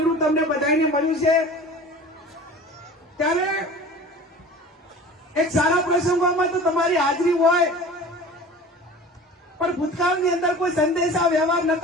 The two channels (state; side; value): normal; both; correlation 0.40